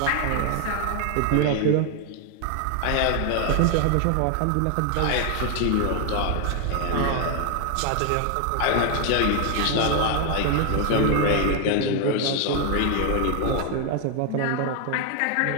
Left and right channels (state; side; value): different; both; correlation 0.01